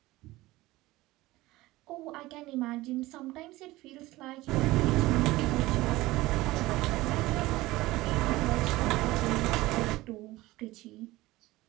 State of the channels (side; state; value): left; quieter; 18.8 dB